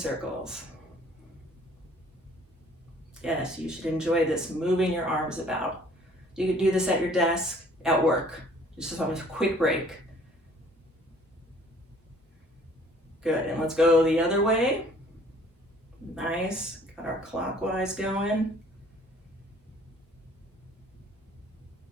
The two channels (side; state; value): both; normal; correlation 0.56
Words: Yes, you should enjoy this, moving your arms about. You could do this at your desk, at work. Just on a quick break. Good, and let's go the other way. Nice, got our clockwise going.